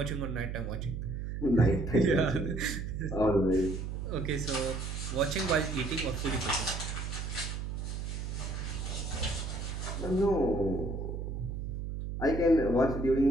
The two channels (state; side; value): noise; right; hum, 5 dB below the sound